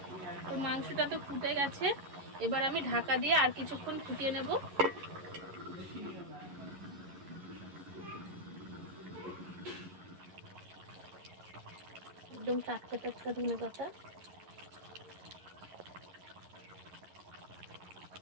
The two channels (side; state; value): left; late; 11 ms